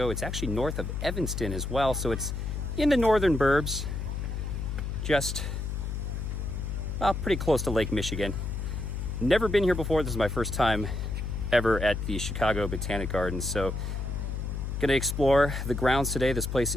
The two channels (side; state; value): left; noise; hum, 3 dB below the sound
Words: It's actually north of Evanston as well, so it's in the northern burbs, just pretty close to Lake Michigan. Never been here before. This is my first time ever at the Chicago Botanic Gardens, so gonna explore the grounds today. This place